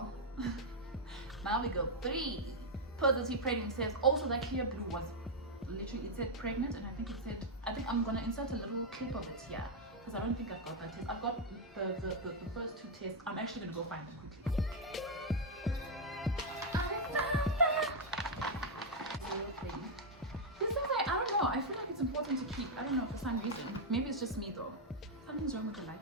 now we go 3 positive pregnancies. Also that clear blue was literally, it said pregnant, and I think I'm gonna insert a little clip of it here. Because I don't think I've got that test. I've got the first 2 tests. I'm actually gonna go find them quickly. This is like, I don't know. I feel like it's important to keep. I don't know, for some reason. Maybe it's just me though. Something's wrong with the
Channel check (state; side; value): normal; both; correlation -0.01